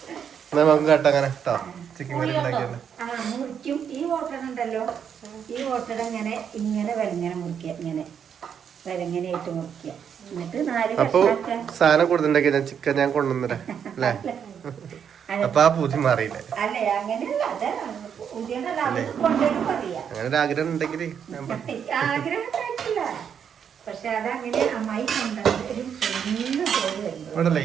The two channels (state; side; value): quieter; left; 7.9 dB